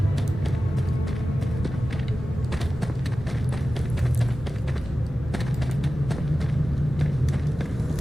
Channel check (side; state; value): both; normal; correlation 0.95